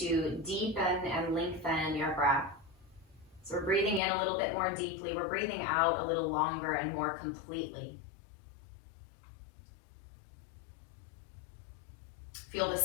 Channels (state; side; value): drops out; right; at 4.0 s